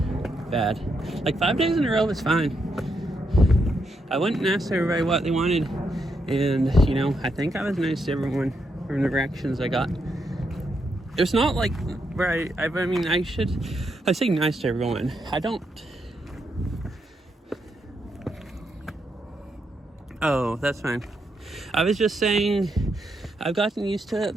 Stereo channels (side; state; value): both; normal; correlation 0.81